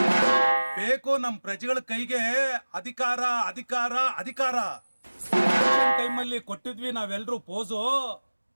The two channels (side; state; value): both; inverted; correlation -1.00